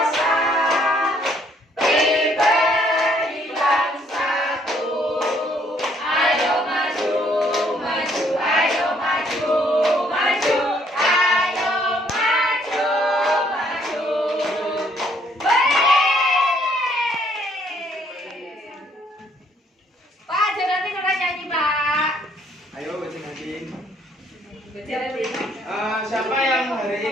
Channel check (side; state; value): both; normal; correlation 0.66